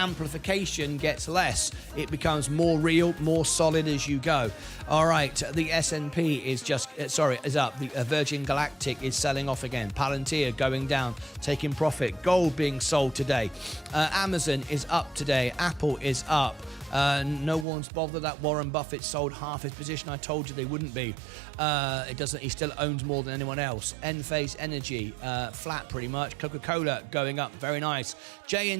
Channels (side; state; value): left; drops out; at 17.7 s